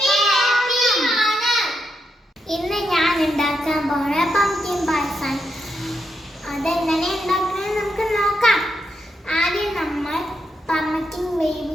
അതെങ്ങനെ ഉണ്ടാക്കുന്നത് നമുക്ക് നോക്കാം. ആദ്യം നമ്മൾ പംകിൻ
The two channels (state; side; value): normal; both; correlation 0.82